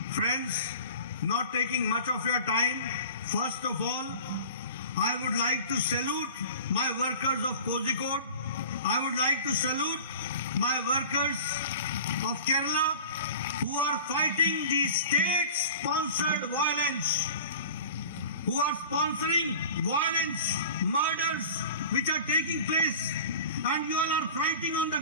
Friends, not taking much of your time, first of all, I would like to salute my workers of Kozhikode. I would like to salute my workers of Kerala who are fighting the state-sponsored violence, who are sponsoring violence, murders which are taking place, and you all are fighting on the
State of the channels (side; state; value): both; inverted; correlation -0.39